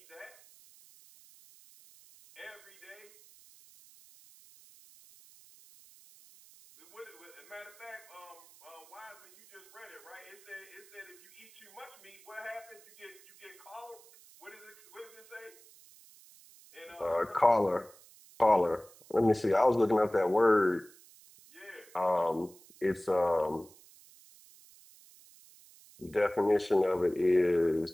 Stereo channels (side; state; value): right; noise; hiss, 24 dB below the sound